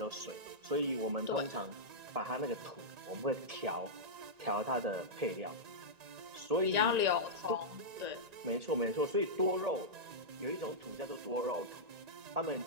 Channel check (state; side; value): late; left; 1.9 ms